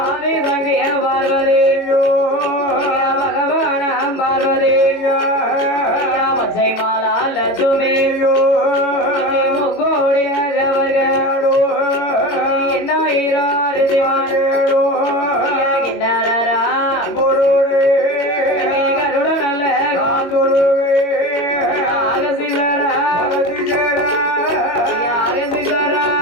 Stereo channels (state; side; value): late; right; 22 ms